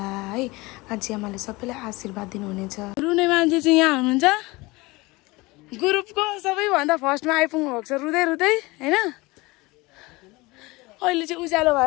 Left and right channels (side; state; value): right; quieter; 22.7 dB